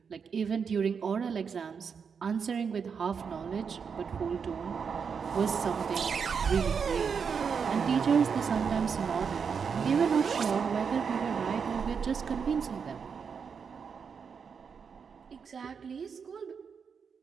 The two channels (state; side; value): quieter; left; 6.3 dB